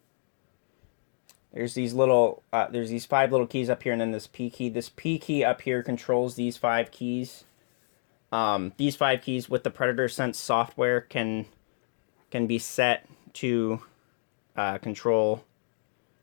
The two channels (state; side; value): silent; right; digital silence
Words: There's these 5 little keys up here, and then this P key. This P key up here controls these 5 keys. These 5 keys with the Predator Sense software can be set to control